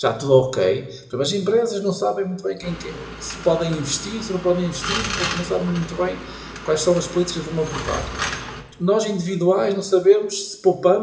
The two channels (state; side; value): identical; both; correlation 1.00